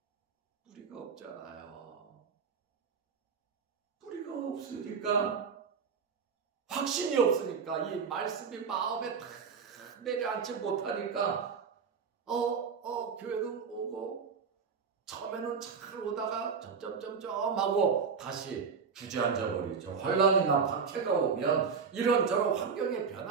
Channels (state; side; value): quieter; left; 5.8 dB